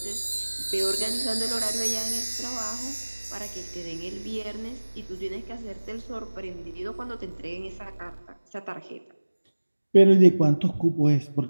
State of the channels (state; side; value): inverted; both; correlation -1.00